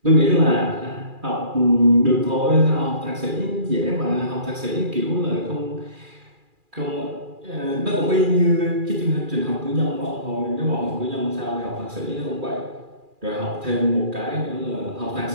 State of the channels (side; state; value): left; late; 2.4 ms